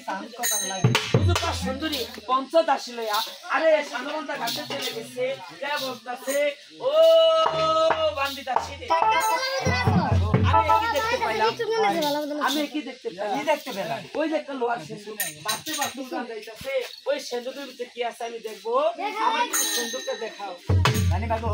সুন্দরী পঞ্চদাসী লইয়া আরে সানবান্ধা ঘাটে চলে গেছে বলতেছে ও বান্দিদাসী আমি কি দেখতে পেলাম ওই যে একটা লোহার সিন্ধুক বাঁচতে বাঁচতে যাইতেছে ওই সিন্ধুকের ভিতরে কি আছে আমি দেখবো আমার সিন্ধুকটা দেখাও জানি বাবু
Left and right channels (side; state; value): both; identical; correlation 1.00